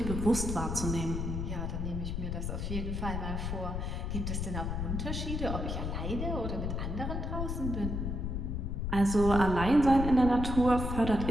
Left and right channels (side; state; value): left; noise; rumble, 2 dB below the sound